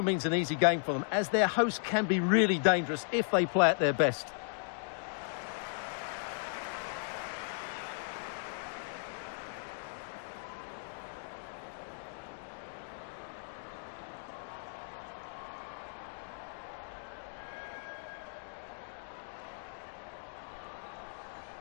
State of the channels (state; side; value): silent; right; digital silence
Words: means an easy game for them, as their host can be really dangerous if they play at their best.